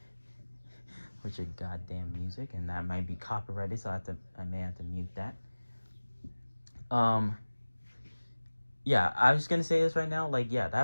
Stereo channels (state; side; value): inverted; both; correlation -1.00